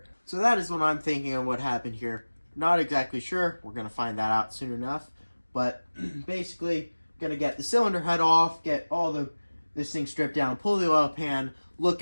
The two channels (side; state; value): both; inverted; correlation -1.00